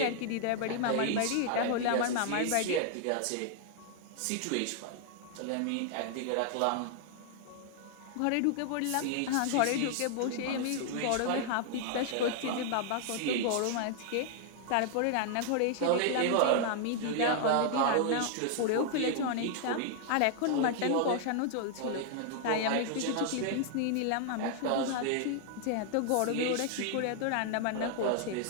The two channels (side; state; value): both; different; correlation 0.00